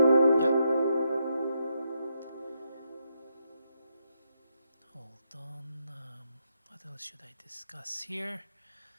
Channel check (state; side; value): inverted; both; correlation -0.80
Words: Yeah. Hold on. What else should I discuss here?